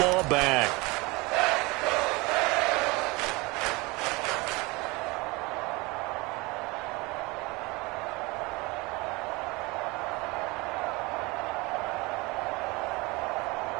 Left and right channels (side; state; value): left; quieter; 24.6 dB